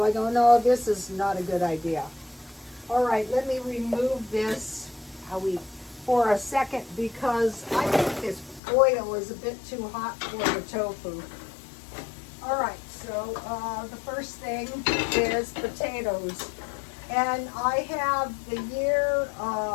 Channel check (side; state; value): right; drops out; at 8.6 s